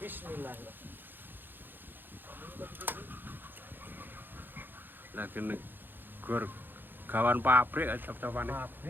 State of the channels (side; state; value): left; late; 0.095 ms